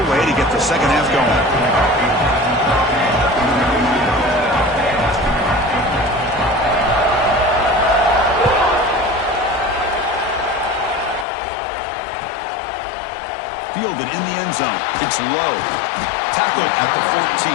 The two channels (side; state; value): right; drops out; at 11.2 s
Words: to get the second half going. Fielded in the end zone. It's low. Tackled at the 14.